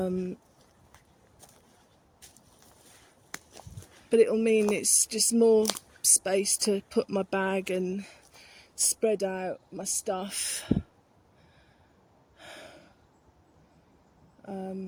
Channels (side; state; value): both; identical; correlation 1.00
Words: it'll mean it's just more space to put my bag and spread out my stuff.